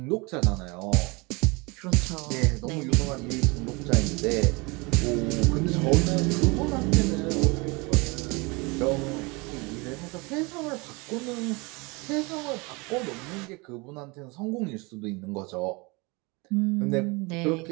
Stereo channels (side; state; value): left; quieter; 27.1 dB